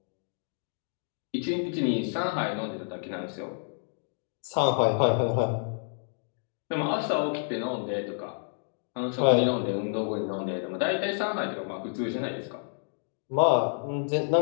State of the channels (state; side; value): silent; right; digital silence